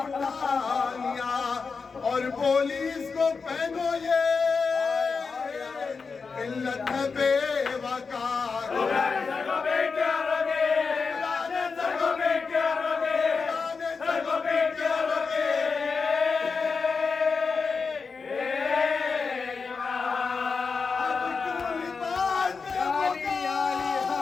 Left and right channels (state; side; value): quieter; right; 4.9 dB